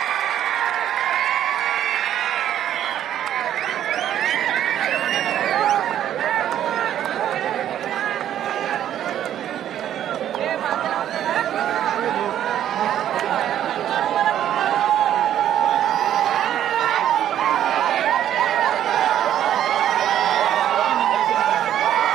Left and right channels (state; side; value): quieter; left; 11.0 dB